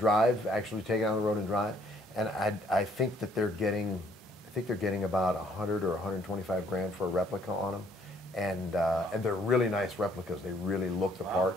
actually take it on the road and drive, and I think that they're getting about 100 or 125 grand for a replica on them, and they're really nice replicas. They really look the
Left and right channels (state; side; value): normal; both; correlation 0.64